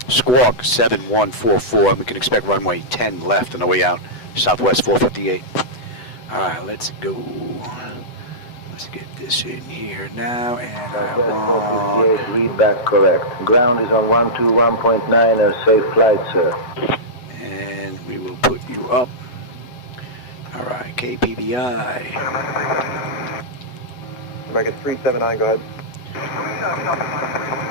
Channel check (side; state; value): right; late; 8.0 ms